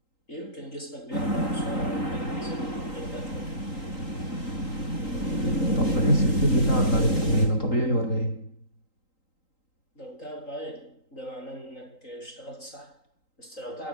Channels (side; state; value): right; late; 3.8 ms